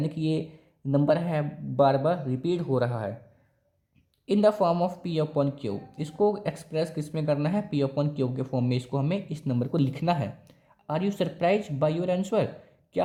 कि ये नंबर है बार बार रिपीट हो रहा है in the form of P upon Q. इसको एक्सप्रेस किस में करना है, पी अपॉन क्यू के फॉर्म में इसको हमें इस नंबर को लिखना है। Are you surprise by your answer, क्या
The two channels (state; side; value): identical; both; correlation 1.00